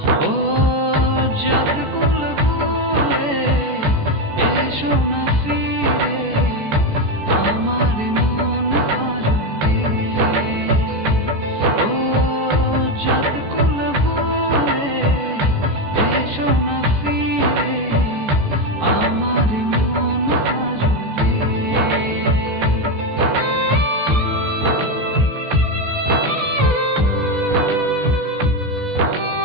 ও জাত কুল ভুলে এসো না ফিরে আমার মন পাজরে। ও জাত কুল ভুলে এসো না ফিরে আমার মন পাজরে।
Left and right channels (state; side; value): late; left; 14 ms